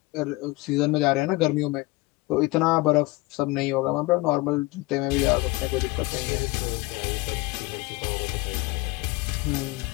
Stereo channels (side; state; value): right; quieter; 22.0 dB